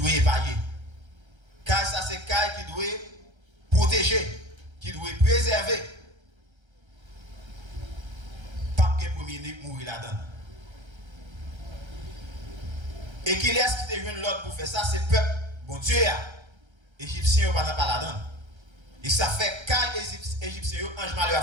épargner. Caille ça c'est caille qui doit protéger, qui doit préserver. Pas que premier né mourir là-dedans. Et qui laisse qui te joindre l'autre pour faire ça, c'est peuple. Bon Dieu, Égyptiens ne pas là-dedans. Et ça fait quand les Égyptiens, ange malheur a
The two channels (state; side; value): late; left; 1.3 ms